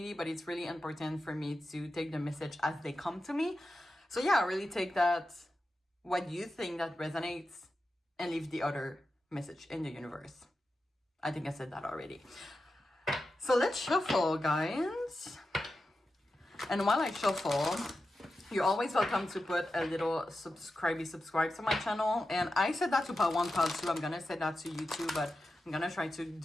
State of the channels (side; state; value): both; normal; correlation 0.91